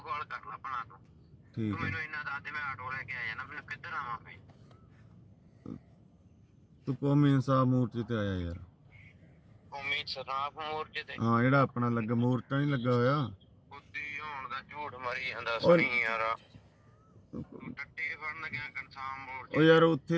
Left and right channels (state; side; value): identical; both; correlation 1.00